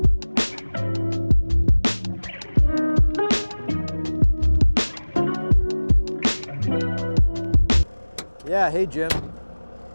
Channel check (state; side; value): inverted; both; correlation -1.00